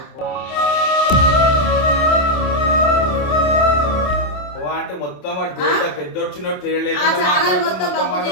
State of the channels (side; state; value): right; late; 27 ms